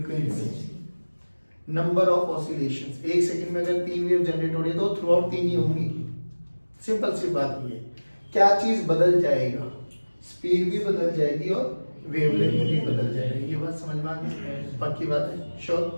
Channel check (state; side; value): inverted; both; correlation -1.00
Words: नंबर ऑफ ऑसिलेशंस, एक सेकंड में अगर 3 वेव जनरेट हो रही है तो थ्रू आउट 3 ही होंगी। सिंपल सी बात ये, क्या चीज बदल जाएगा? स्पीड भी बदल जाएगी और वेवलेंथ भी बदल जाएगी। ये बात समझ में आ गई? पक्की बात है,